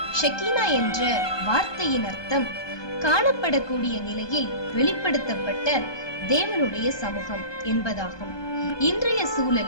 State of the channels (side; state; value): right; late; 1.2 ms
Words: ஷெக்கீனா என்ற வார்த்தையின் அர்த்தம் காணப்படக்கூடிய நிலையில் வெளிப்படுத்தப்பட்ட தேவனுடைய சமூகம் என்பதாகும். இன்றைய